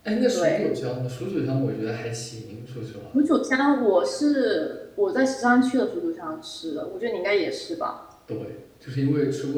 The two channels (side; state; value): both; identical; correlation 1.00